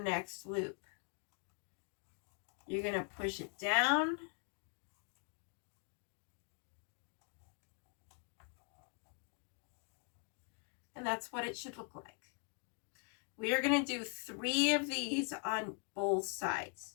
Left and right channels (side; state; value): right; quieter; 39.9 dB